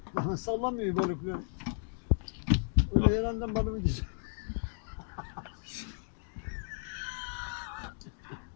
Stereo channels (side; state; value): right; silent; 55 dB below the other